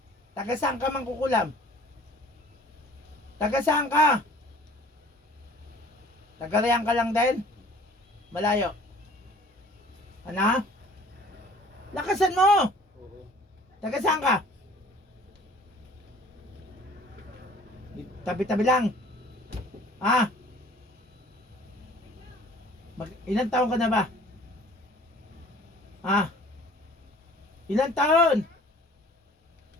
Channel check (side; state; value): both; normal; correlation 0.50